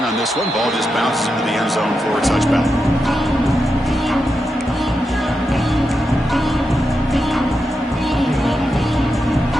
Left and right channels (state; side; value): normal; both; correlation 0.87